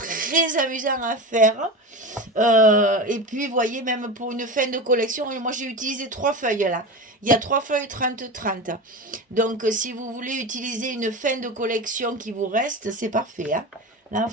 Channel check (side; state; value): both; normal; correlation 0.25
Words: amusant à faire. Et puis, vous voyez, même pour une fin de collection, moi, j'ai utilisé 3 feuilles là. Il y a 3 feuilles 30-30. Donc, si vous voulez utiliser une fin de collection qui vous reste, c'est parfait, hein. Là,